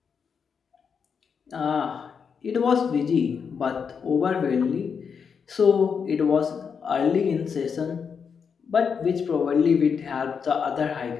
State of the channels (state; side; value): quieter; right; 6.4 dB